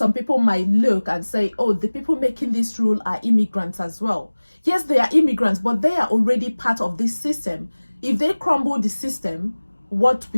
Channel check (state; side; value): inverted; both; correlation -1.00